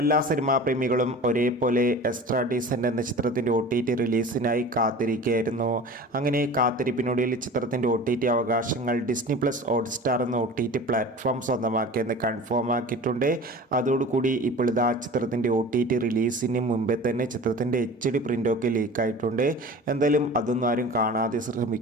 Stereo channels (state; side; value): normal; both; correlation 0.38